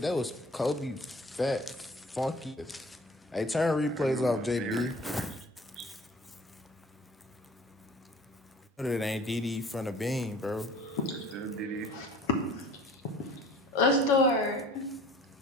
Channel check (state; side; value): normal; both; correlation 0.48